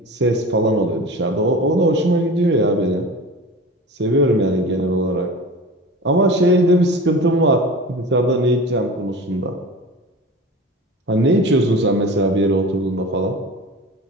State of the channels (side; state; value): both; normal; correlation 0.34